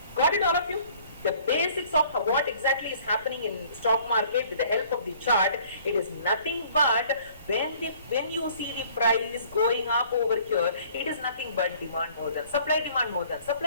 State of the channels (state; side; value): inverted; both; correlation -0.55